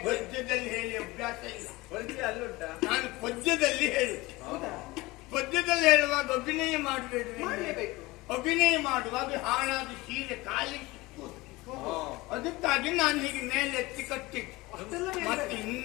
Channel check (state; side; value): quieter; right; 21.3 dB